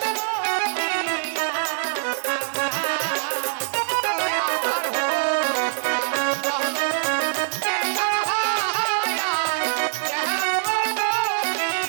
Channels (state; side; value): silent; left; digital silence